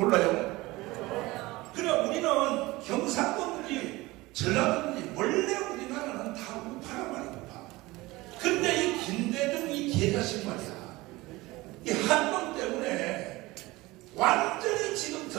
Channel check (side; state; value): left; quieter; 20.6 dB